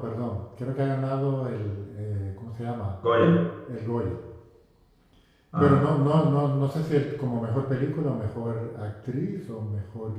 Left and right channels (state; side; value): identical; both; correlation 1.00